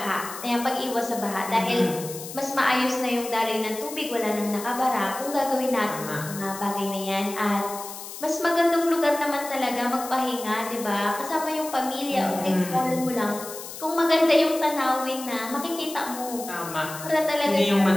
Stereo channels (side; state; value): left; noise; hiss, 11 dB below the sound